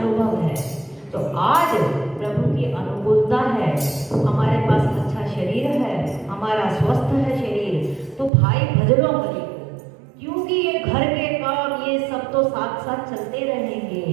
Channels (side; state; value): left; drops out; at 8.3 s